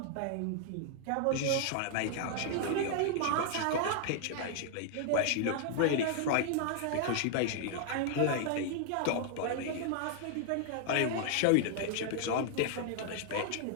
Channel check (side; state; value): both; different; correlation 0.00